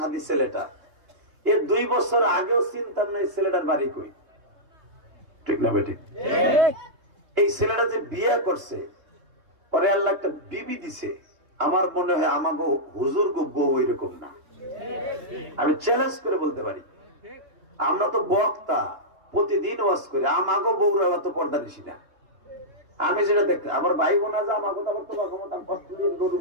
ছেলেটা এর 2 বছর আগেও চিন্তা নাই ছেলেটার বাড়ি কই, ঠিক না বেটি? এই ছেলেটা যে বিয়ে করছে পরে আল্লাহ একটা বিবি দিছে, আমার মনে হয় আমাকে হুজুর গো বউ এরকম না। আমি চ্যালেঞ্জ করে বলতে পারি, আমরা তো বক্তা প্রতিদিন ওয়াজ করি, আমাকে বউরা অত পর্দা নিছি না। আমি যেটা দেখতে আমার ভাই বোনা যা আমাকে তো আমার তোমার ক্ষমতা কষ্ট দিয়ে গরুর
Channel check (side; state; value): left; late; 3.2 ms